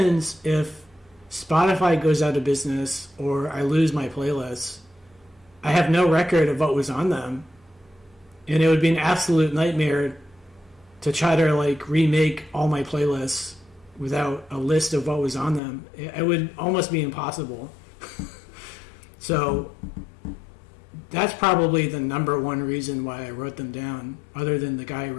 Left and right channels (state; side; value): drops out; right; at 15.6 s